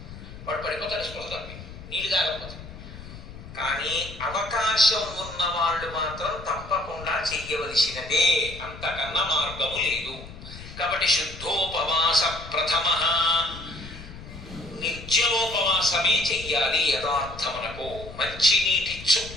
వాడు పడిపోతాడు స్పృహ తప్పి, నీళ్ళు తాగకపోతే. కానీ అవకాశం ఉన్న వాళ్ళు మాత్రం తప్పకుండా చెయ్యవలసినదే, అంతకన్నా మార్గము లేదు. కాబట్టి శుద్ధోపవాస ప్రథమ నిర్జలోపవాసమే చెయ్యాలి. యథార్థమునకు మంచినీటి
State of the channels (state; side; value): noise; left; rumble, 14 dB below the sound